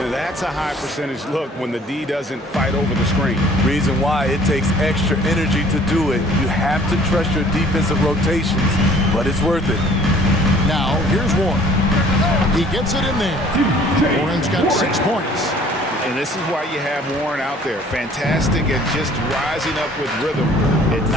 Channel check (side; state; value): both; normal; correlation 0.54